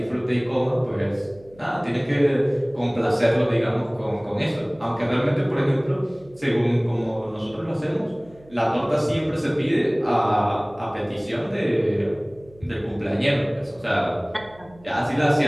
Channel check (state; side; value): noise; right; hum, 26 dB below the sound